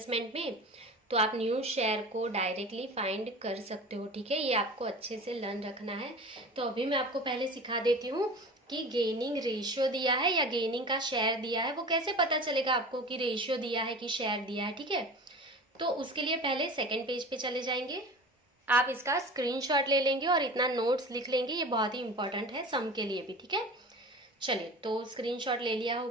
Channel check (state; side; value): normal; both; correlation 0.36